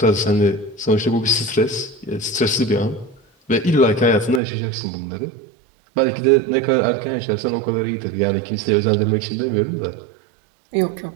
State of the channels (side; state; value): left; drops out; at 4.4 s